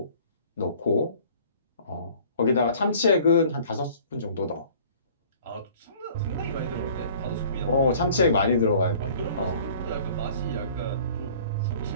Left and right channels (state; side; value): inverted; both; correlation -0.51